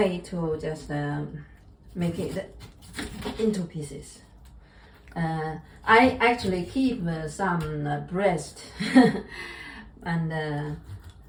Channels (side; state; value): both; identical; correlation 1.00